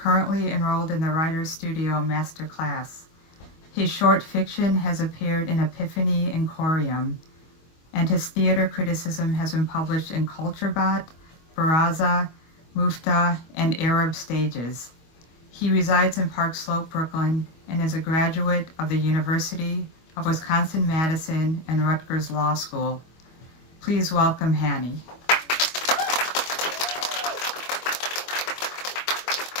enrolled in the Writer's Studio Master Class. His short fiction has appeared in Epiphany and Corium, and his theater criticism has been published in CultureBot, Baraza, Mufta, and Arab Stages. He resides in Park Slope, Brooklyn, and is a graduate of the University of Wisconsin-Madison and Rutgers Law School. Please welcome Hani.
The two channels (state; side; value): late; right; 25 ms